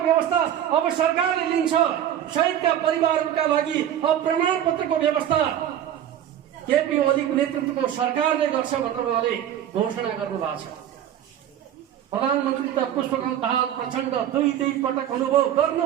अब सरकारले लिन्छ, शहीदका परिवारहरूका लागि अब प्रमाणपत्रको व्यवस्था केपी ओलीको नेतृत्वको सरकारले गर्छ भनेर उहाँले घोषणा गर्नुभएको छ। प्रधानमन्त्री त पुष्पकमल दाहाल प्रचण्ड दुई पटक अनुभव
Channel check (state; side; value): quieter; left; 10.7 dB